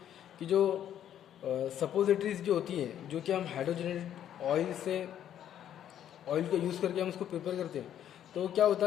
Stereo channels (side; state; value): right; quieter; 10.4 dB